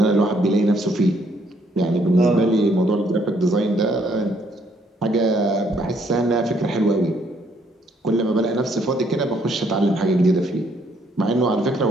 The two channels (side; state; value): both; normal; correlation 0.68